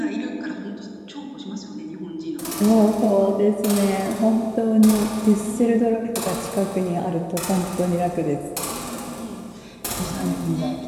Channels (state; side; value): identical; both; correlation 1.00